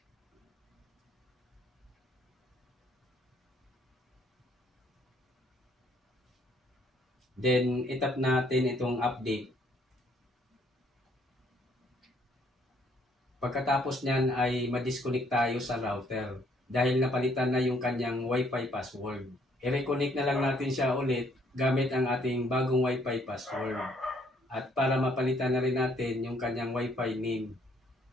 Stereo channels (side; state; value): both; normal; correlation 0.66